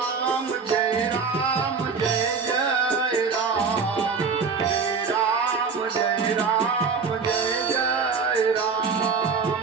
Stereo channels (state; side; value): quieter; left; 5.3 dB